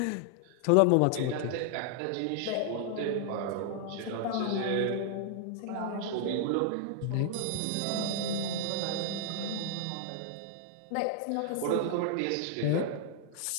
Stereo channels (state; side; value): different; both; correlation -0.01